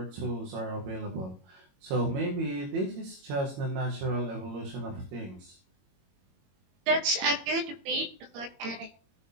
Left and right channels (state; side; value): late; left; 22 ms